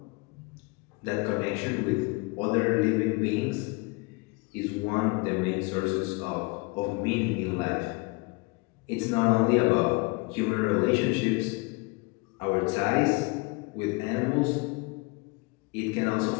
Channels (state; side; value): quieter; right; 27.6 dB